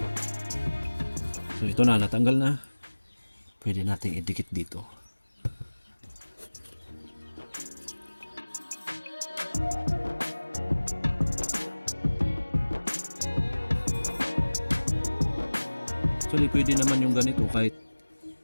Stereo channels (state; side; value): inverted; both; correlation -1.00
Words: So ito na, natanggal na. Pwede nating idikit dito. Actually, pwede naman yung ganito, kahit